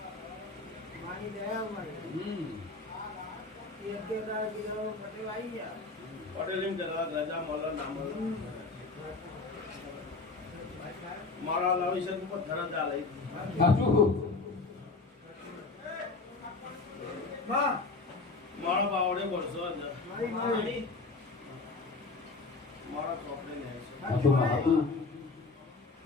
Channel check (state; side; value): quieter; right; 3.8 dB